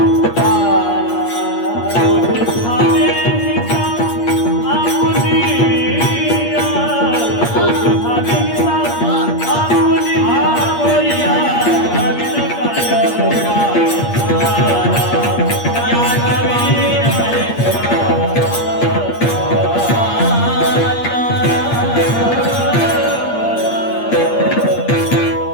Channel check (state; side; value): late; right; 8.5 ms